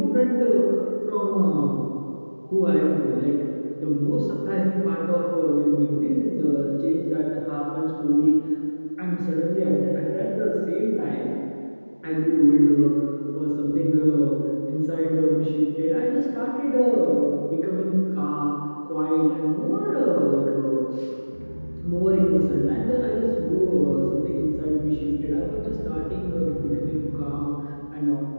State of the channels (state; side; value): inverted; both; correlation -1.00